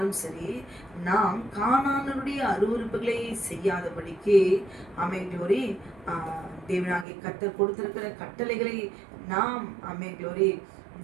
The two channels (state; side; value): drops out; left; at 7.1 s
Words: சரி, நாம் கானானுடைய அருவருப்புகளை செய்யாதபடிக்கு க்ளோரி தேவனாகிய கர்த்தர் கொடுத்திருக்கிற கட்டளைகளை நாம் க்ளோரி